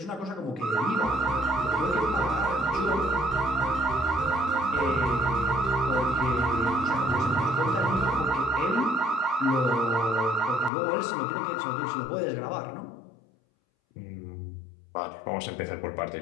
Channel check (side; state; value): right; drops out; at 10.7 s